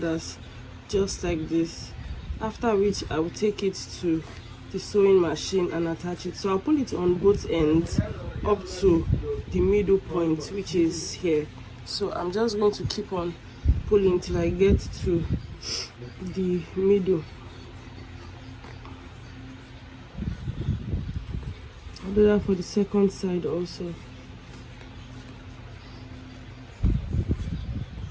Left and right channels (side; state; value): both; identical; correlation 1.00